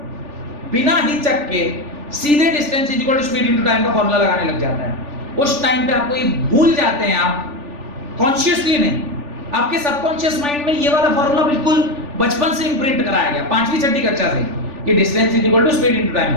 बिना हिचक के सीधे distance is equal to speed into time का फार्मूला लगाने लग जाता है। उस टाइम पे आपको ये भूल जाते हैं, आप कॉन्शियसली नहीं, आपके सबकॉन्शियस माइंड में ये वाला फार्मूला बिल्कुल बचपन से इंप्रिंट कराया गया, 5वीं 6वीं कक्षा से, कि distance is equal to speed into time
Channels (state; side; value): late; left; 3.4 ms